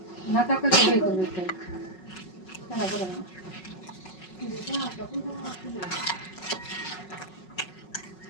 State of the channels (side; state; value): right; late; 5.4 ms